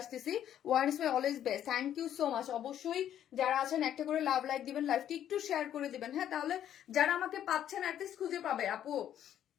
আসতেছি। One is my always best. Thank you so much. অবশ্যই যারা আছেন একটা করে লাভ লাইক দিবেন, লাইভটি একটু শেয়ার করে দিবেন। হ্যাঁ, তাহলে যারা আমাকে পাচ্ছেন অ্যাটলিস্ট খুঁজে পাবে আপু।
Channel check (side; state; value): right; quieter; 10.6 dB